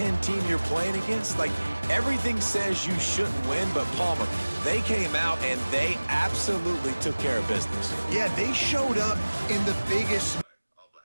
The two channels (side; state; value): both; inverted; correlation -1.00